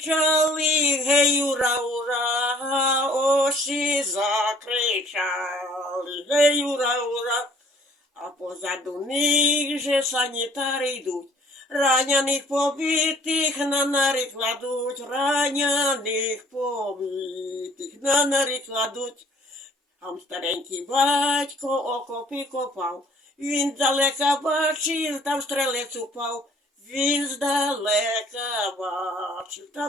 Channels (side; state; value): both; normal; correlation 0.56